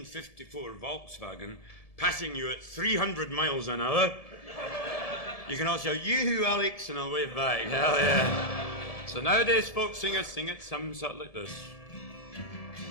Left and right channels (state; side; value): late; right; 1.7 ms